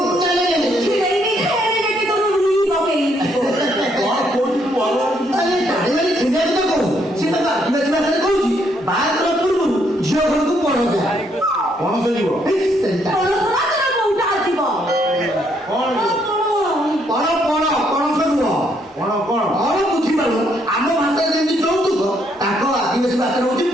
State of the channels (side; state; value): both; normal; correlation 0.72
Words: ছিড়াই নি দেখে তোর রুই বকেই କଣ କହୁଛୁ ଭଲ ଟାଣିମାନେ ଛିଣ୍ଡିଆ କଥା କହୁ ସେ ତାକୁ ଆଦିବାସୀ ଭାଷାରେ କହୁଛି ବାହାଘର ପୂର୍ବରୁ ଝିଅ ଘରକୁ ପଣସ ପଣସ ଯିବ ପଣସରା ତୋର କୋଉଟା ଆସିବ କଣ ପଣସ ନୁହଁ କଣ କଣ କଣ ବୁଝିପାରୁ ଆମ ଭାଷାରେ ଯେମିତି ଯୌତୁକ ତାଙ୍କ ଆଦିବାସୀ ଭାଷାରେ ହଉଛି